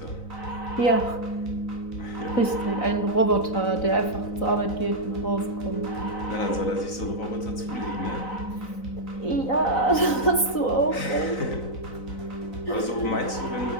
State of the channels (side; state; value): right; late; 3.9 ms